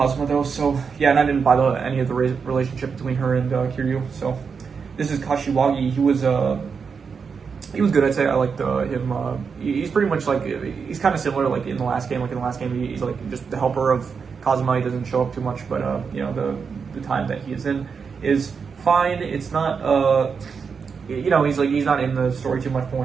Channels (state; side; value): quieter; left; 5.8 dB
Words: though. So yeah, and I didn't buy any of the relationship between her and Kiryu. So this is Kashiwagi. He was good. I'd say I liked him. He's pretty much like he's kind of similar like in the last game. Like in the last game, he's like just the helper of Kazuma. He doesn't show up too much, but you know the time that he is in is fine. It's not you know, he's not in the story too much, but